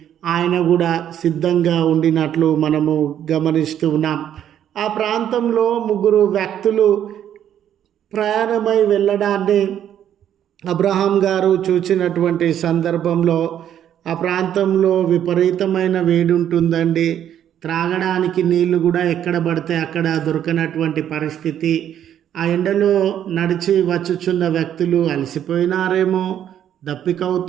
ఆయన కూడా సిద్ధంగా ఉండినట్లు మనము గమనిస్తూ ఉన్నాం. ఆ ప్రాంతంలో 3 వ్యక్తులు ప్రయాణమై వెళ్ళడాన్ని అబ్రహాం గారు చూసినటువంటి సందర్భంలో ఆ ప్రాంతంలో విపరీతమైన వేడి ఉంటుందండి. త్రాగడానికి నీళ్లు కూడా ఎక్కడ పడితే అక్కడ దొరకనటువంటి పరిస్థితి. ఆ ఎండలో నడిచి వచ్చుచున్న వ్యక్తులు అలసిపోయినారేమో,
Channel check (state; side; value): quieter; left; 10.2 dB